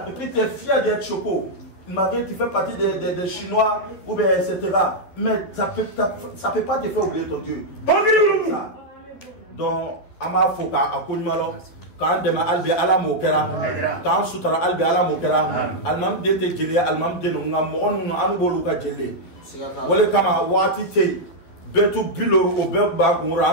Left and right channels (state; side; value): late; right; 11 ms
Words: Et puis tu es fier d'être choco. Marie, tu fais partie des Chinois ou bien etc. Mais ça peut pas te faire oublier ton Dieu. Ça. Donc, ama foka akunmalo. Quand dema albi ala mokera, quand sutra albi ala mokera, almam dete jeli, almam denu ngam onu anu boluka jeli. Wale kama wati te betu bilor o be ba ngura